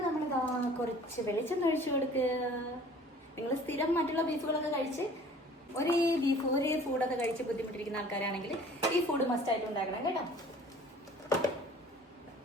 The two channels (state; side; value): normal; both; correlation 0.49